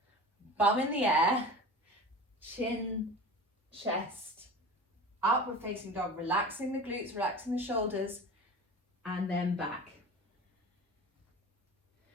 bum in the air, chin, chest, upward facing dog, relaxing the glutes, relaxing the shoulders, and then back.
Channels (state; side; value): normal; both; correlation 0.35